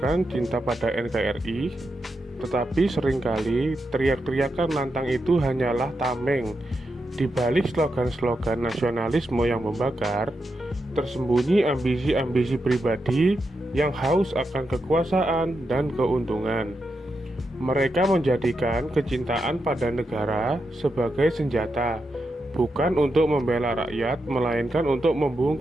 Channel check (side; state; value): both; normal; correlation 0.86